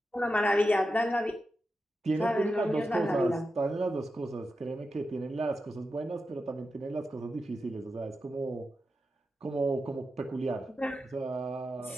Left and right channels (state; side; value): normal; both; correlation 0.89